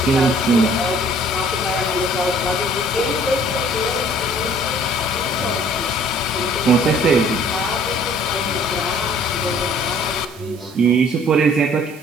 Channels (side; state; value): right; noise; hiss, 22 dB below the sound